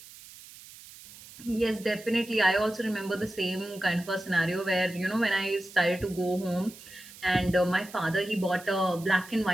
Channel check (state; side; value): noise; right; hiss, 18 dB below the sound